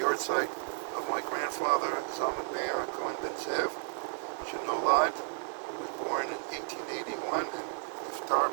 yahrzeit of my grandfather, Zalman Meir Cohen Ben Zev, Shenolad, who was born in 1881 and niftar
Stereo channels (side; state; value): left; silent; 56 dB below the other